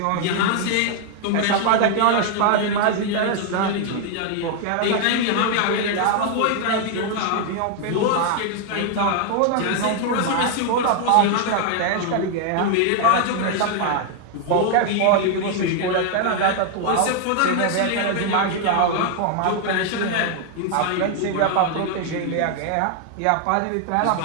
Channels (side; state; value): both; different; correlation 0.00